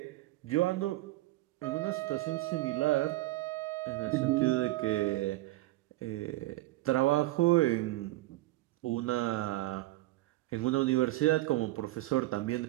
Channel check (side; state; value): left; quieter; 17.9 dB